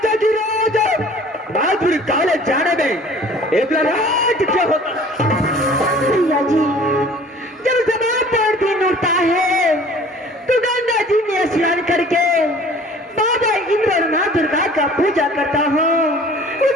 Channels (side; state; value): both; normal; correlation 0.49